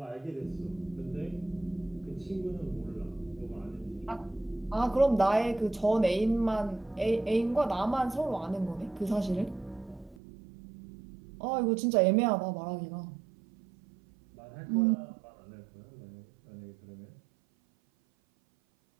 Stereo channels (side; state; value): left; drops out; at 10.2 s